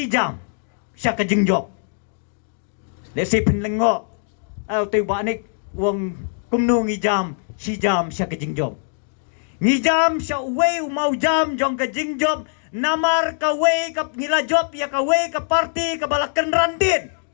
jam sya kajing job desi pinlengo au tu banik wong kumnu ngi jam si jam sya kajing job ngi jam sya wei mau jam jong kajing job namar kawe ka ngila job ya kawe ka parti ka balakan randin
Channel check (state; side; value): silent; right; digital silence